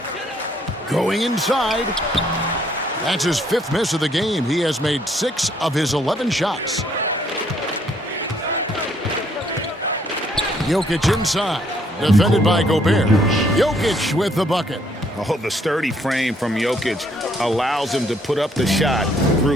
Going inside. That's his 5th miss of the game. He has made 6 of his 11 shots. Jokic inside. Defended by Gobert. Jokic with the bucket. Oh, the sturdy frame from Jokic allows him to put up the shot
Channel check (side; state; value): both; normal; correlation 0.67